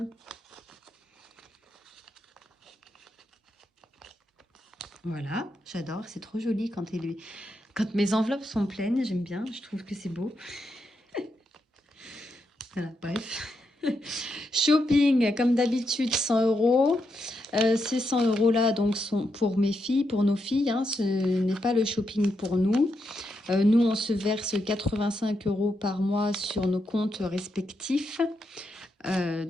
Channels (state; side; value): normal; both; correlation 0.83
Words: Voilà, j'adore, c'est trop joli quand mes enveloppes sont pleines, j'aime bien, je trouve que c'est beau. Voilà, bref. Shopping, comme d'habitude, 100 €. Ces 100 € là donc sont pour mes filles, pour nos filles, hein, ce n'est pas le shopping pour nous. Nous, on se verse 85 € par mois sur nos comptes respectifs.